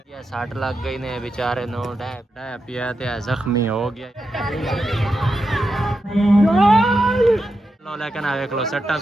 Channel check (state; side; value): normal; both; correlation 0.87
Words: साठ लग गई ने बेचारे नो पिया जख्मी हो गया। लेकिन देख लो सट्टा